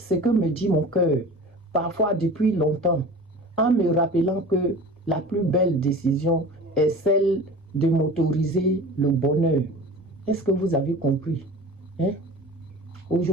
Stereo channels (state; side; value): normal; both; correlation 0.38